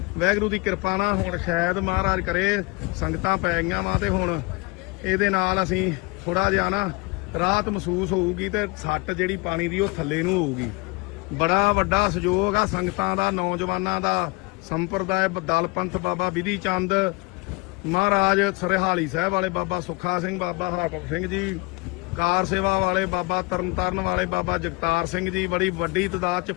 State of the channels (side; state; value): right; quieter; 27.1 dB